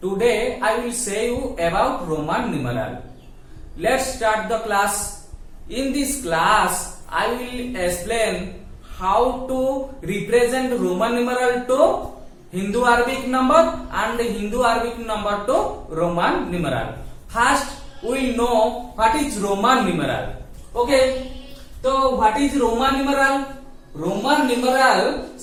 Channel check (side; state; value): both; identical; correlation 1.00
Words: Today I will say you about Roman numeral. Let's start the class. In this class I will explain how to represent Roman numeral to Hindu Arabic number and Hindu Arabic number to Roman numeral. First we will know what is Roman numeral. Okay, so what is Roman numeral? Roman numeral